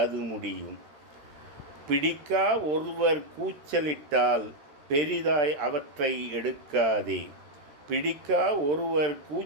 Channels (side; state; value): left; late; 13 ms